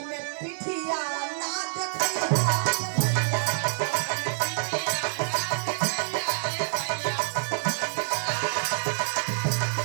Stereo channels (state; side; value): silent; left; 60 dB below the other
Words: में पिठिया ना देखैया।